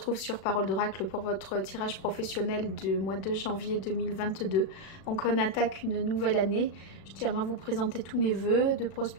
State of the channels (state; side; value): late; right; 36 ms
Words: sur Parole d'Oracle pour votre tirage professionnel du mois de janvier 2022. Donc on attaque une nouvelle année. Je tiens à vous présenter tous mes vœux de